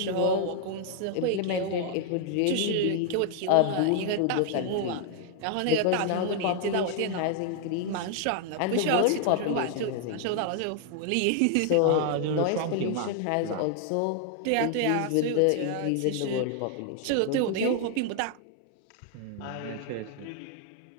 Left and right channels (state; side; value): different; both; correlation 0.00